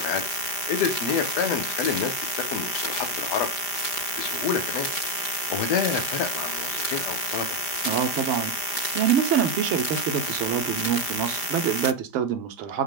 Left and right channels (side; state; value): right; late; 5.0 ms